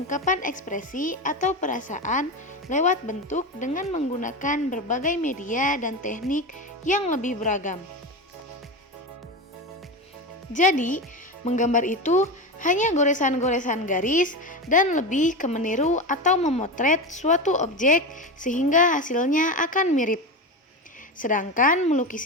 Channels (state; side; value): normal; both; correlation 0.20